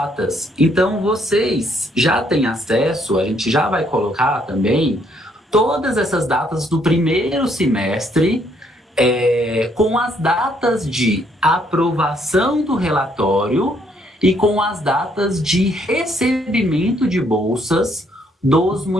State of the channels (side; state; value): both; normal; correlation 0.69